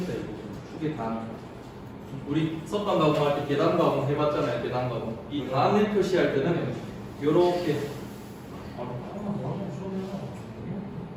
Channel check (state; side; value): identical; both; correlation 1.00